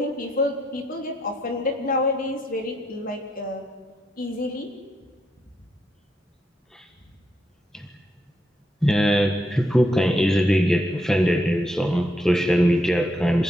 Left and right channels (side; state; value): both; normal; correlation 0.79